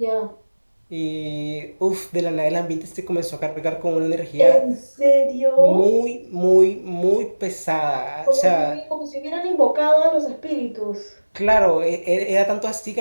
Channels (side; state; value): both; inverted; correlation -1.00